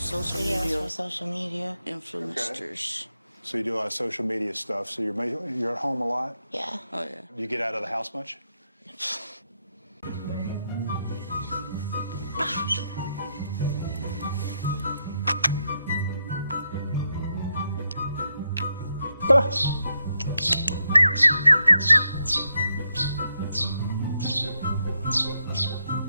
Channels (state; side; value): inverted; both; correlation -0.82